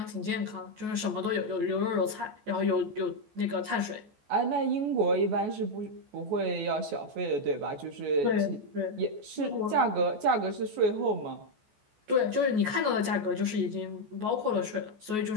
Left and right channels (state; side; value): late; left; 14 ms